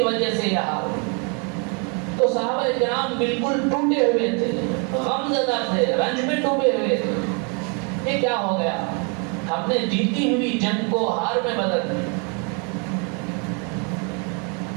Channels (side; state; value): left; quieter; 36.1 dB